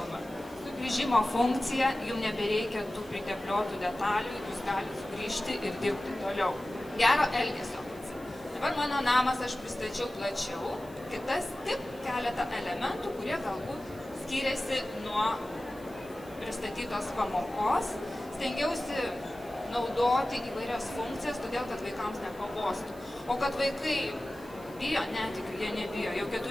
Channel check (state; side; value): noise; right; hiss, 24 dB below the sound